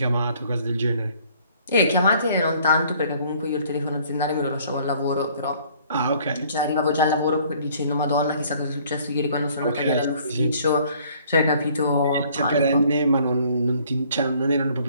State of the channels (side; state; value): both; inverted; correlation -0.59